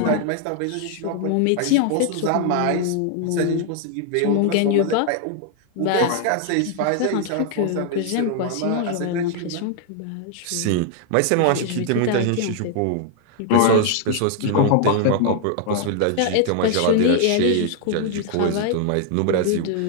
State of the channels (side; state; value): both; different; correlation 0.00